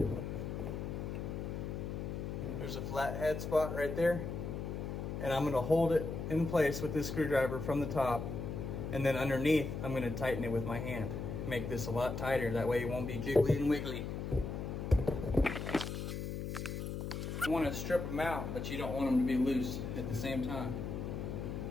There's a flathead spot right there. And I'm gonna hold it in place with this screwdriver from the top. And then underneath, I'm gonna tighten it with my hand. Make this a lot tighter, that way it won't be jiggly and wiggly. You wanna strip them out, but you don't want them to be loose at the same time.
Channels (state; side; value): noise; left; hum, 4 dB below the sound